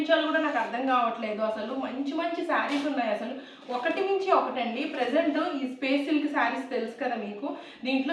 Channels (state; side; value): identical; both; correlation 1.00